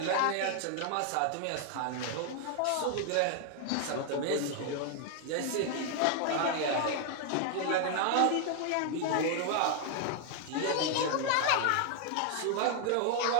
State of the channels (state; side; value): different; both; correlation 0.00